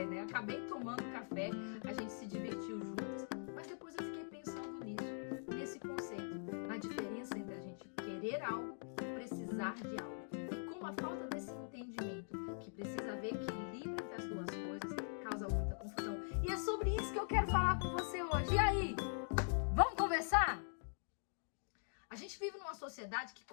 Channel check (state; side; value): silent; right; digital silence